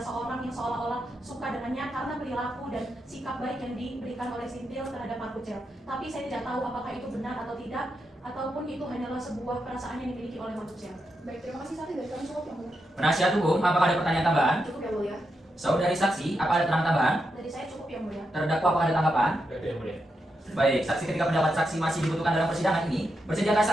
seorang yang seolah-olah suka dengannya karena perilaku dan sikap baik yang diberikan oleh Serintil terhadap Mas Pucel. Tapi saya tidak tahu apakah itu benar atau tidak, ataupun itu hanyalah sebuah perasaan yang dimiliki oleh Mas Pucel. Baik, terima kasih saksi dari kami cukup yang mulia. Penasihat hukum, apakah ada pertanyaan tambahan? Cukup ya, mulia. Saudari saksi, apa ada keterangan tambahan? Dari saya cukup ya, mulia. Terdakwa, apakah ada tanggapan? Baik yang mulia. Baik, saksi ketika pendapat saksi masih dibutuhkan dalam persidangan ini, bersediakah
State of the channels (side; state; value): both; normal; correlation 0.85